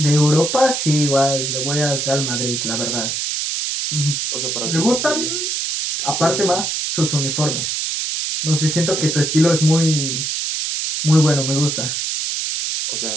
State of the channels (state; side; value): noise; right; hiss, 1 dB below the sound